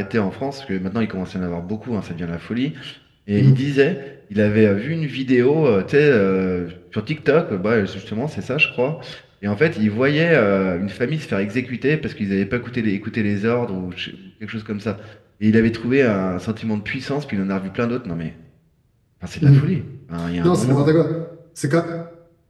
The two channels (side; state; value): both; identical; correlation 1.00